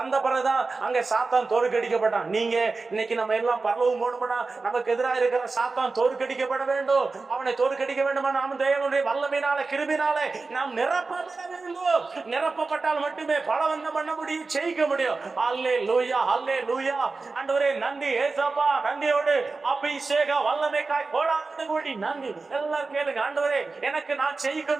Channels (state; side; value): quieter; left; 3.9 dB